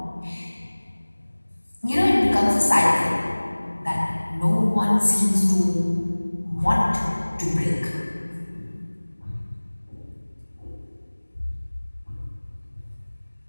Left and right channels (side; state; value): both; inverted; correlation -1.00